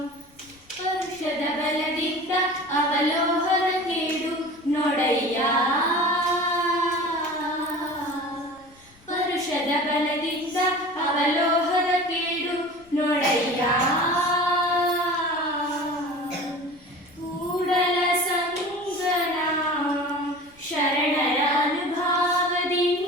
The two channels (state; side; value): noise; left; rumble, 29 dB below the sound